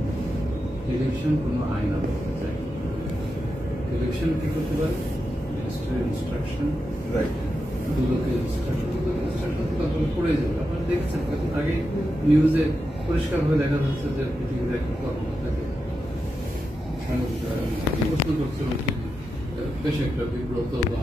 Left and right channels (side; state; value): both; normal; correlation 0.88